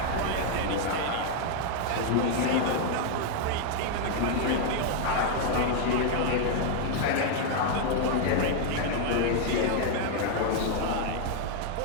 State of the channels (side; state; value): both; different; correlation 0.00